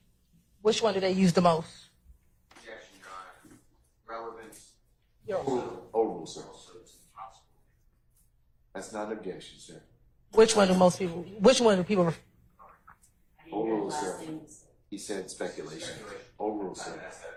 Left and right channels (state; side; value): identical; both; correlation 1.00